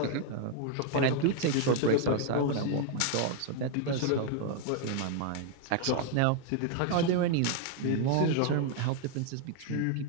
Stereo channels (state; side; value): different; both; correlation 0.00